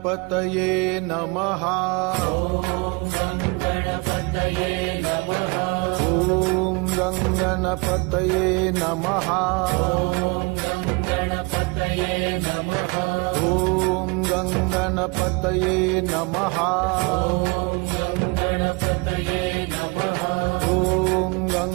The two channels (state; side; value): quieter; left; 28.9 dB